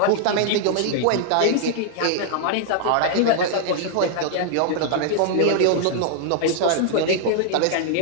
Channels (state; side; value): different; both; correlation -0.01